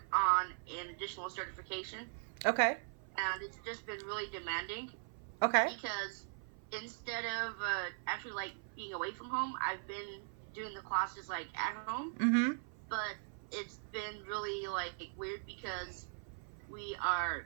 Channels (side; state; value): left; silent; 51 dB below the other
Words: on an additional certification, Okay. and it's just been really demanding Okay. because instead of actually like being away from home, I've been doing the classes like at home, Mhm. but it's been really like weird because we are